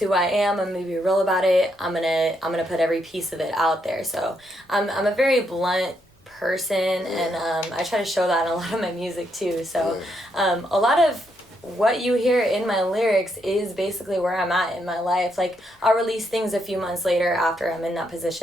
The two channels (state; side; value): normal; both; correlation 0.77